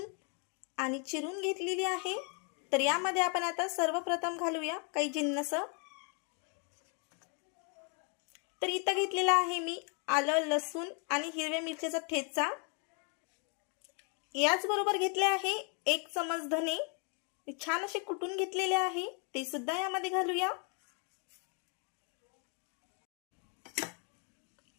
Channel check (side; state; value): right; quieter; 37.9 dB